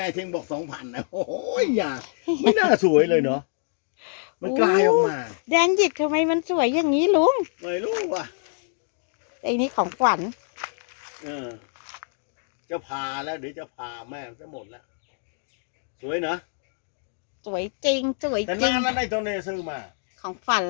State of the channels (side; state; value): right; silent; digital silence